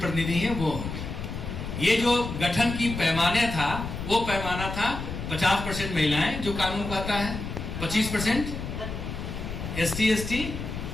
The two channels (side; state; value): left; noise; rumble, 6 dB below the sound